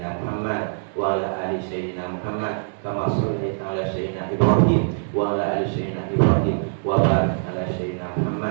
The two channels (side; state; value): left; silent; digital silence